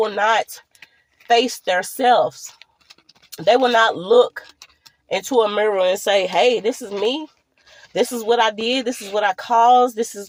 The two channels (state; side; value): identical; both; correlation 1.00